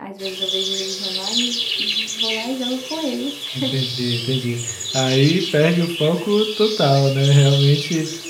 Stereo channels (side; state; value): both; identical; correlation 1.00